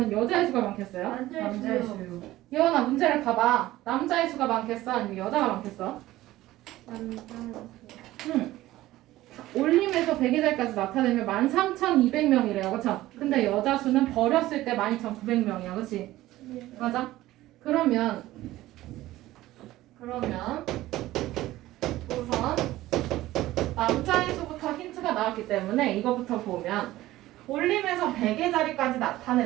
여자의 수가 많겠어요? 남자의 수. 예원아 문제를 봐봐. 남자의 수가 많겠어? 아니면 여자가 많겠어? 올림에서 100의 자리까지 나타내면 13,200명이래요, 그쵸? 근데 여자 수는 버렸을 때 12,900명이야, 그치? 맞아? 그러면 우선 남자의 수부터 힌트가 나왔기 때문에 이거부터 보면 올림에서 100의 자리까지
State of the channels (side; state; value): left; quieter; 16.2 dB